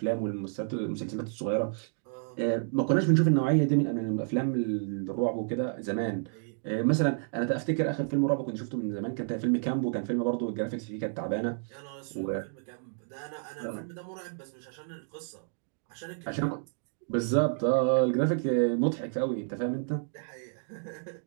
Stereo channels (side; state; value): left; silent; digital silence